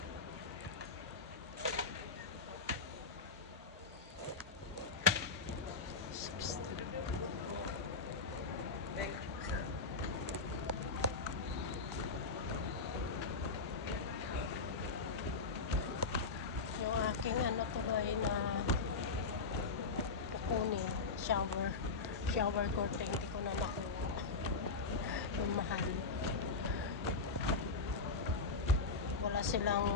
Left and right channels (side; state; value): right; quieter; 4.3 dB